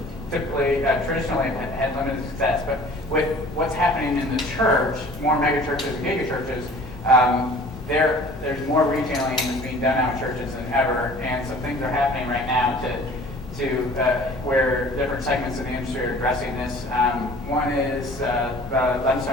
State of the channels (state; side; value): normal; both; correlation 0.47